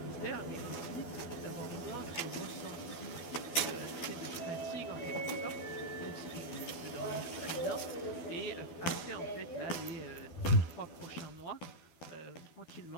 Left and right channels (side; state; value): right; late; 12 ms